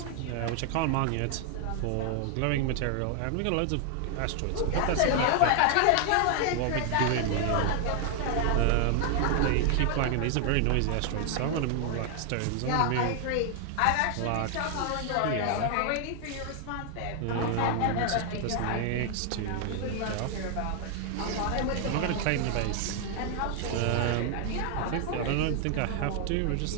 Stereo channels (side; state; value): both; different; correlation 0.00